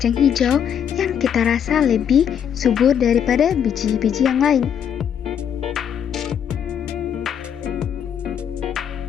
hijau yang kita rasa lebih subur daripada biji-biji yang lain.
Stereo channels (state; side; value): quieter; right; 8.6 dB